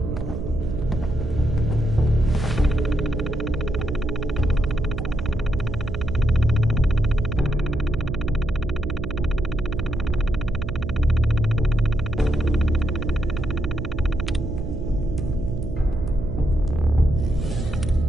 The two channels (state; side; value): noise; right; hum, 7 dB below the sound